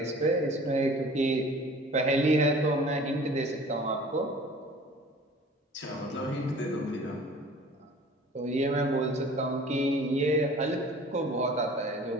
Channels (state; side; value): normal; both; correlation 0.47